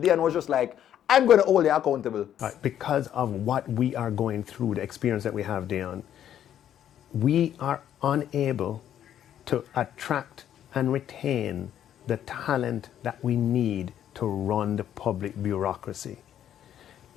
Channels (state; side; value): quieter; right; 10.5 dB